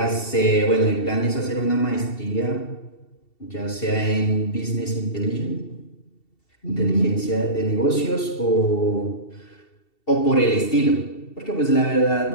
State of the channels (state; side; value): late; right; 2.7 ms